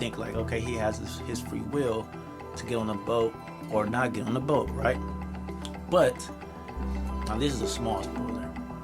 like, okay, he has his free will to get on the boat or not get on the boat, right? But now this is a small spoiler.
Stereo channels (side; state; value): both; identical; correlation 1.00